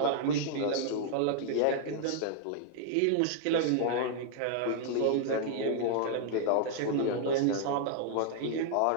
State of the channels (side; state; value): both; different; correlation -0.01